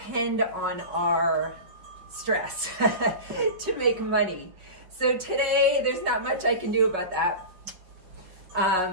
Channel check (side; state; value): left; late; 5.4 ms